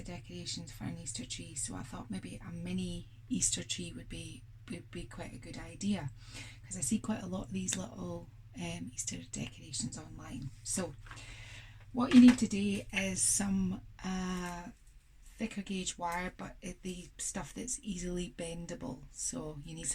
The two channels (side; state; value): both; identical; correlation 1.00